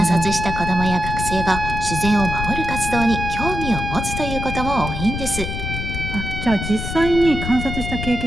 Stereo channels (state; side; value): noise; left; rumble, 5 dB below the sound